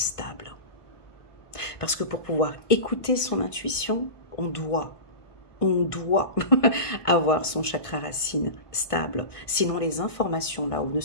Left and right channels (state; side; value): late; right; 1.2 ms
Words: Parce que pour pouvoir écouter son intuition, on doit avoir son chakra racine stable. Sinon, les informations là-haut ne